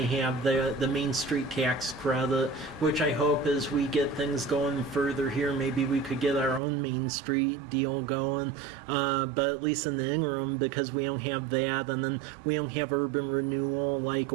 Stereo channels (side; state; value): left; drops out; at 6.6 s